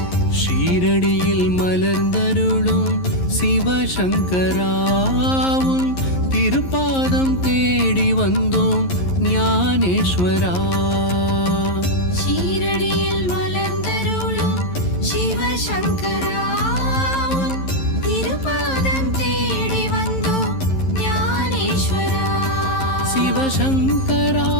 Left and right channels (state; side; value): late; right; 11 ms